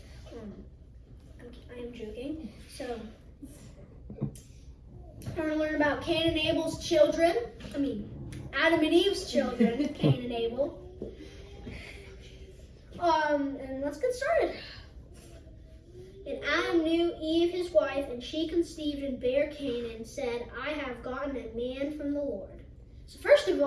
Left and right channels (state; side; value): identical; both; correlation 1.00